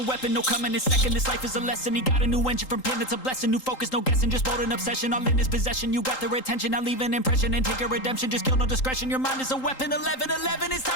weapon, no coming in second. This life is a lesson, he got a new engine from pain, that's a blessing. New focus, no guessing, just bold an obsession. All in his possession, you got their attention. I'll leave an impression and take your redemption. Just kill no discretion, your mind is a weapon. 11-11, it's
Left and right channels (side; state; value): right; late; 3.8 ms